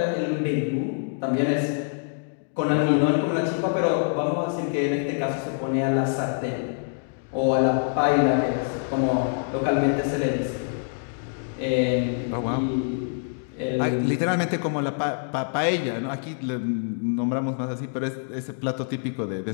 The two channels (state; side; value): silent; right; digital silence